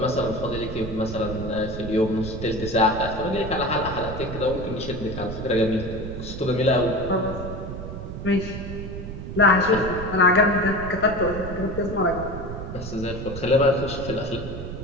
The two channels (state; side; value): noise; right; rumble, 8 dB below the sound